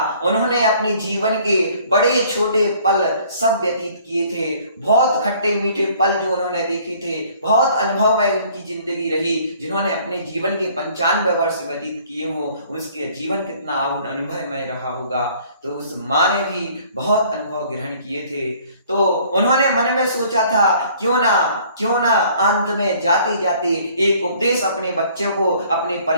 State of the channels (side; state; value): both; inverted; correlation -0.56